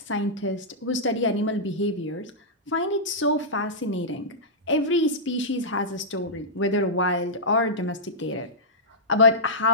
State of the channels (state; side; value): normal; both; correlation -0.13